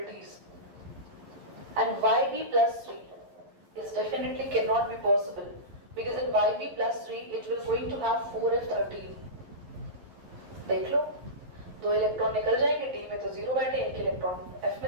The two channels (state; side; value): late; left; 11 ms